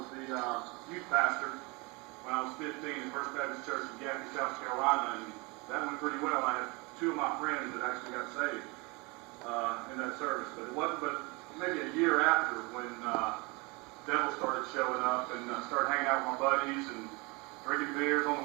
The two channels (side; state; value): left; quieter; 27.3 dB